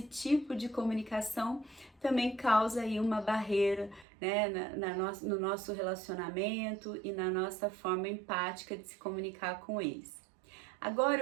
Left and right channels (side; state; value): left; drops out; at 4.0 s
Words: tipo de comunicação também causa aí uma barreira, né, no nosso relacionamento e na nossa forma empática de se comunicar com eles. Agora